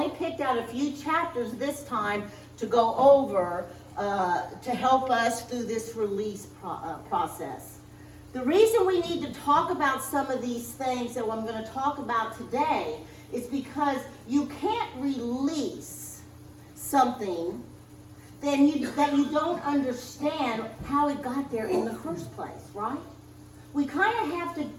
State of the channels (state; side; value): identical; both; correlation 1.00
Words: picked out a few chapters this time to go over to help us through this release process. The reason we need to talk about some of these things that I'm going to talk about today is because you can't release something that you don't understand how it got there in the first place, right? We kind of have